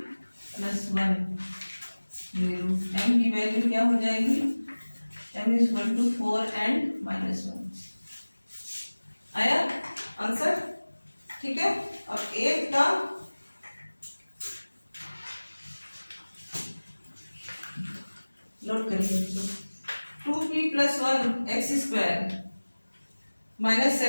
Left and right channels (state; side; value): inverted; both; correlation -1.00